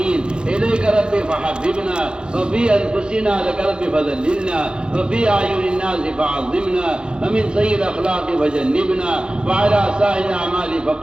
إليك ربي فحببنا، وفي أنفسنا لك ربي فذللنا، وفي أعين الناس فعظمنا، ومن سيء الأخلاق فجنبنا، وعلى سائر الأعمال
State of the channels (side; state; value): left; late; 0.049 ms